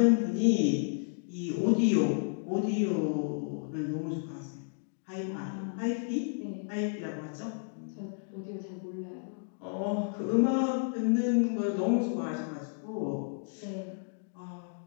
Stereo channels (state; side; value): silent; right; digital silence